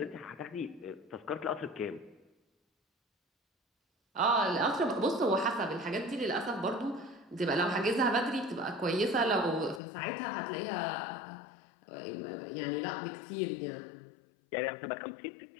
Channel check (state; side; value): drops out; right; at 9.8 s